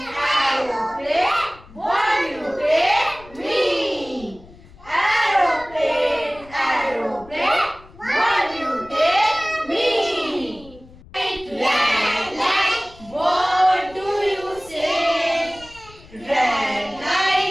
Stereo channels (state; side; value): noise; left; rumble, 22 dB below the sound